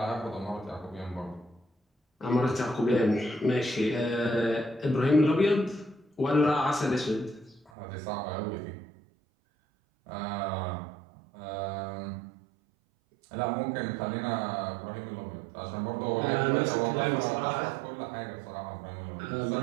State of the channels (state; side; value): drops out; left; at 7.7 s